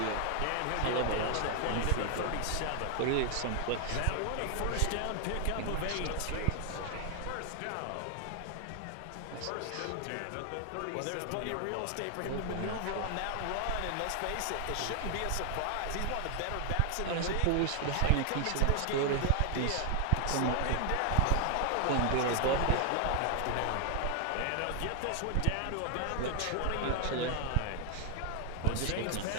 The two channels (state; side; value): different; both; correlation 0.00